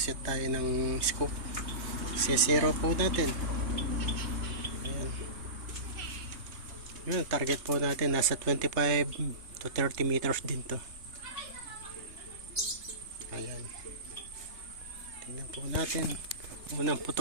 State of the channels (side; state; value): left; late; 3.2 ms